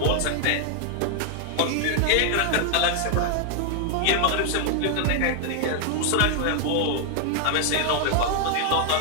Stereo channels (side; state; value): both; different; correlation 0.00